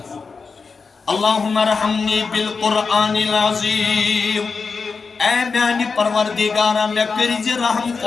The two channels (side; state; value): right; quieter; 4.8 dB